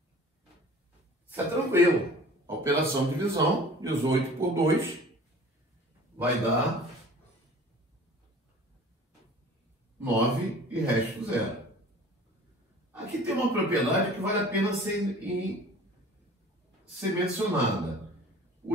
isso é tranquilo. A operação de divisão, 18 por 2, vai dar 9 e resto 0. Aqui tem uma propriedade que vale a pena ser mencionada. O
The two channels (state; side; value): normal; both; correlation 0.45